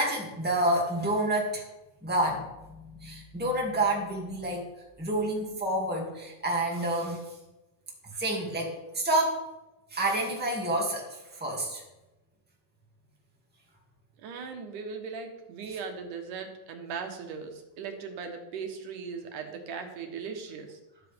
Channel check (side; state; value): both; normal; correlation -0.08